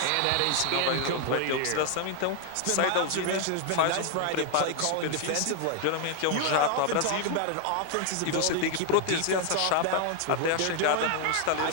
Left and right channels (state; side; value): different; both; correlation 0.00